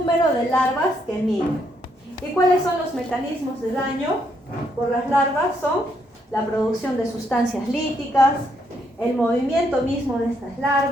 de larvas que migran. ¿Y cuáles son los mecanismos de daño por las larvas? Son la producción de sustancias líticas, el movimiento mismo de estas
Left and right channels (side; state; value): both; normal; correlation 0.74